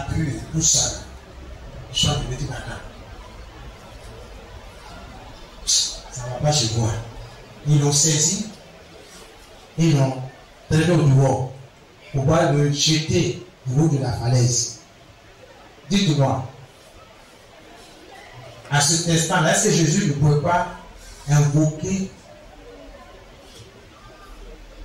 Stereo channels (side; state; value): both; identical; correlation 1.00